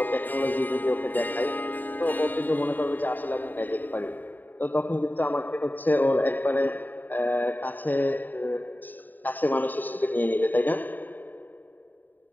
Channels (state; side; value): late; right; 0.088 ms